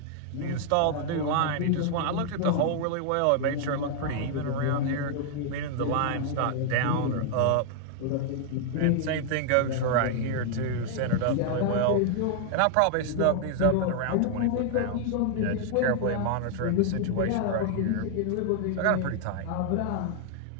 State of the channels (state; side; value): different; both; correlation 0.00